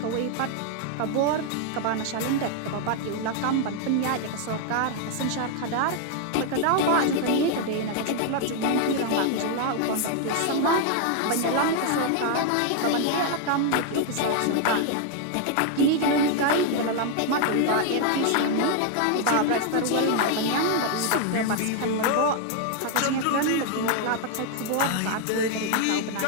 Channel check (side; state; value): both; different; correlation 0.00